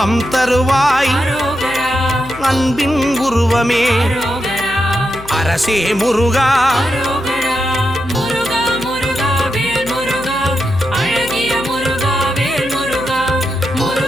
தருவாய் அரோகரா அன்பின் உருவமே அரோகரா அரசே முருகா அரோகரா முருகா முருகா வேல் முருகா அழகிய முருகா வேல் முருகா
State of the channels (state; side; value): noise; left; hum, 16 dB below the sound